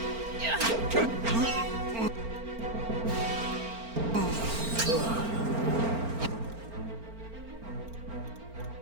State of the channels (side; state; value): left; late; 4.4 ms